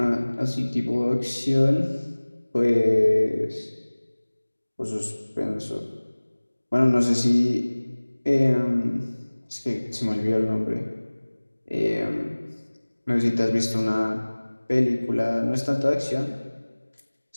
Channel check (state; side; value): inverted; both; correlation -1.00